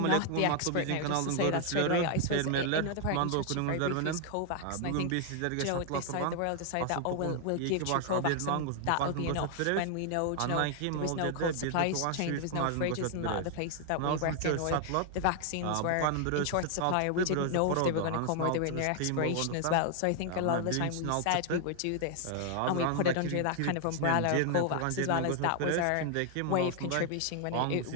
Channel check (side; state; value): both; different; correlation 0.00